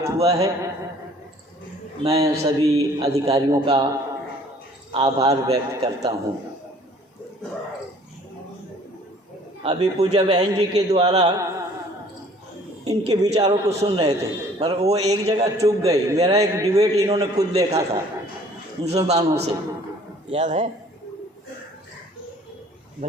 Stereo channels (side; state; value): both; normal; correlation 0.54